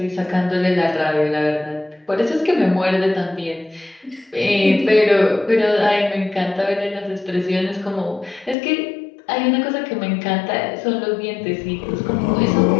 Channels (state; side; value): drops out; right; at 8.6 s